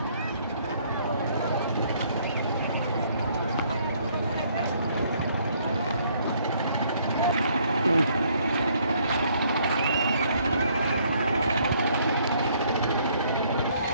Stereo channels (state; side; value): inverted; both; correlation -0.65